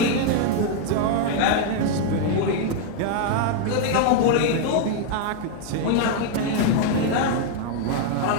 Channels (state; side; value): different; both; correlation 0.00